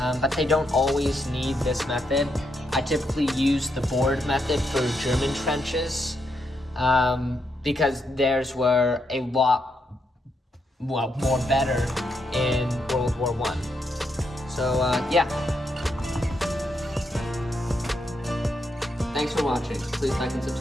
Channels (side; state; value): both; normal; correlation 0.80